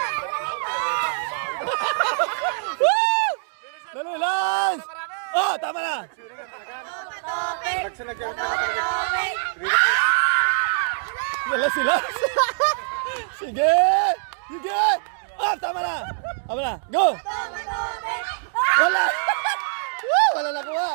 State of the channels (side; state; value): left; silent; digital silence